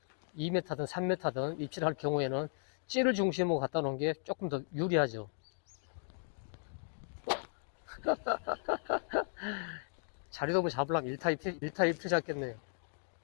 2m든 3m든 입질할 경우에는 찌를 중심으로 갖다 놓은 게 조금 더 유리하죠. 자리돔을 잡으려면 1타 1트 잡겠네요.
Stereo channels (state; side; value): silent; right; digital silence